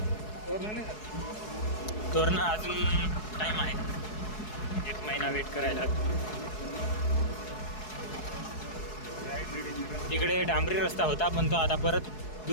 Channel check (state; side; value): late; right; 4.7 ms